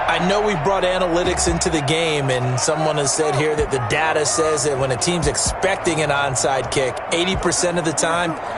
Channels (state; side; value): identical; both; correlation 1.00